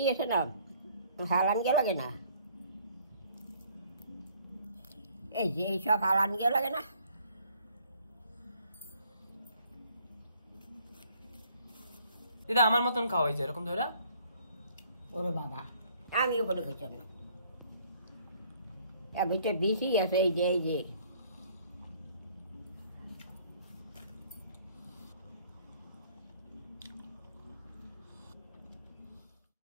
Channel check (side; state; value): both; inverted; correlation -0.61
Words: আছে না, হালান গে লাগে না? এই যে এইসব হালান গে লাগে না? দিদা আমার মতন খাও, এই যে এরকম ধরা। ওরে বাবা আমি ওখানে খেয়েছি না, এবার তো বেশি আছে, এই যে